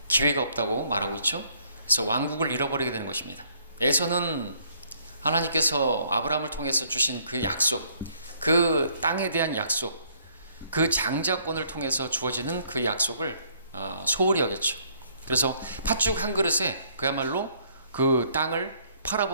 기회가 없다고 말하고 있죠. 그래서 왕국을 잃어버리게 되는 것입니다. 에서는 하나님께서 아브라함을 통해서 주신 그 약속, 그 땅에 대한 약속, 그 장자권을 통해서 주어지는 그 약속을 소홀히 여겼죠. 그래서 팥죽 한 그릇에 그야말로 그 땅을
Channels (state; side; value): inverted; both; correlation -0.65